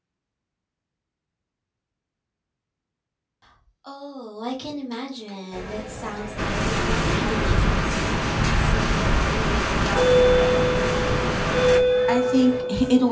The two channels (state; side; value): identical; both; correlation 1.00